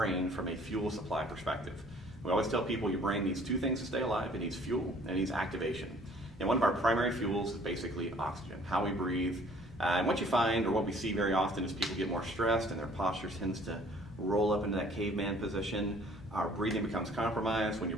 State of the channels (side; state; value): both; normal; correlation 0.56